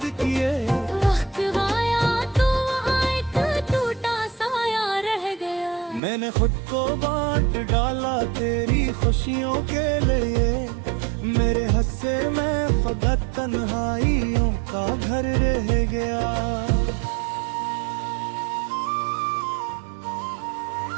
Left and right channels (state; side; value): drops out; left; at 6.0 s